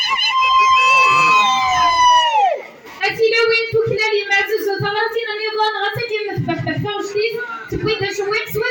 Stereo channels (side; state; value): both; identical; correlation 1.00